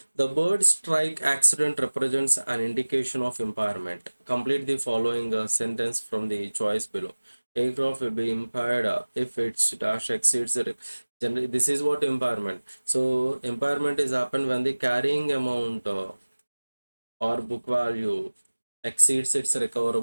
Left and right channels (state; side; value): inverted; both; correlation -1.00